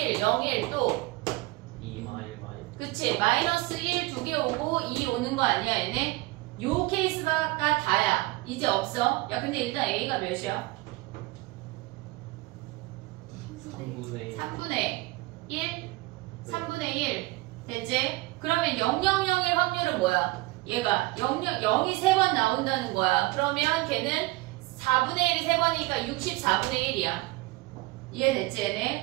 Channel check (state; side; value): quieter; left; 21.0 dB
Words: 0, 1 또. 2 마일. 그치. 마이너스 1 두 개 오고 2 오는 거 아니야 얘네? 요 케이스가 다야. 이제 없어. 야 근데 일단 A가 몇이야? 3분의 1? 3분의 1 됐지? 그러면 000일 확률은 뭐야? 얘가 0이 3번 나온다는 거야. 그러면 걔는 4분의 1이 3번이니까 64분의 1이야. 이해됐지